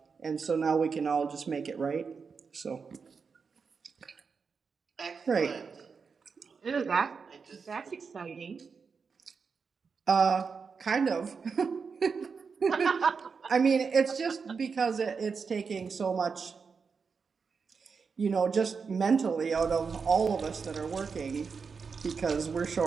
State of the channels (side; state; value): left; quieter; 5.4 dB